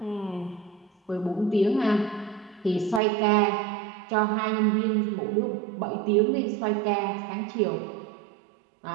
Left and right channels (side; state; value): left; drops out; at 3.0 s